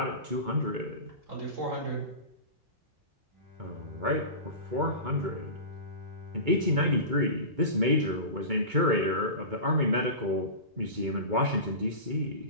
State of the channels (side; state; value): left; late; 2.2 ms